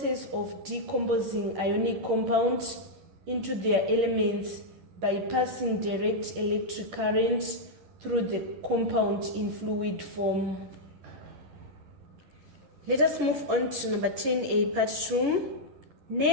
of decomposing ionic compounds into their elements by passing direct electric current through the compound in fluid form. Let us move on to number 10A, part 2.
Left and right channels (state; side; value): late; left; 11 ms